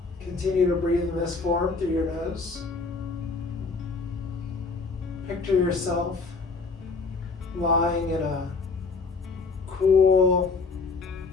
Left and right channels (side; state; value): right; quieter; 4.2 dB